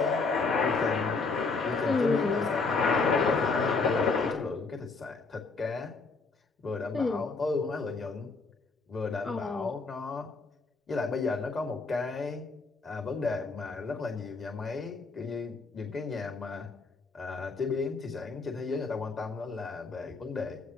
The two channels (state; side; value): quieter; right; 4.1 dB